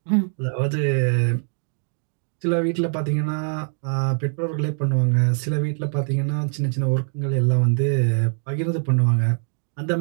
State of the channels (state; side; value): silent; left; 58 dB below the other